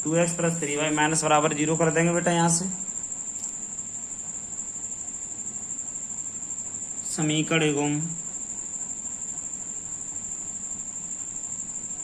2x + 3y - 0 कर देंगे बेटा यहाँ से। समीकरण एवं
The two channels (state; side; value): identical; both; correlation 1.00